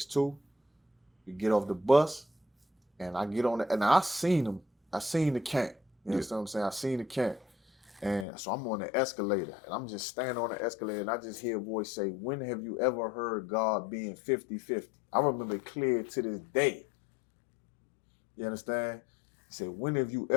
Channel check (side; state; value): right; drops out; at 8.2 s